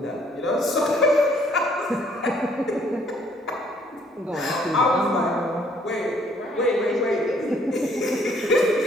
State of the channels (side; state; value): both; normal; correlation 0.63